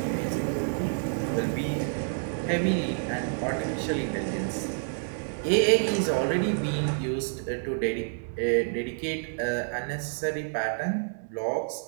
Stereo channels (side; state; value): left; silent; digital silence